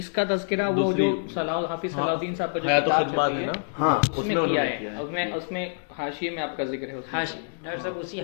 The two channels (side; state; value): right; silent; digital silence